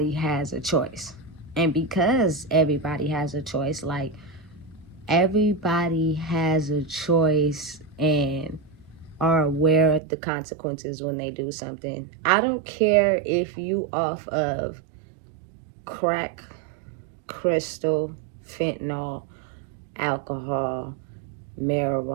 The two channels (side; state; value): left; drops out; at 10.0 s